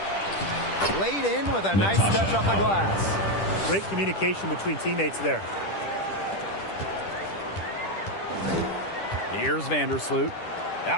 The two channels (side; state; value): right; late; 10 ms